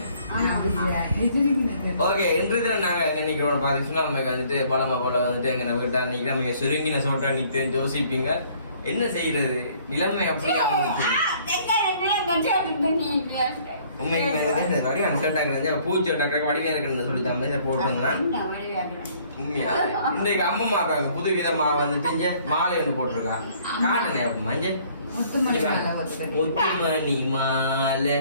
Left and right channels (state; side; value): inverted; both; correlation -0.59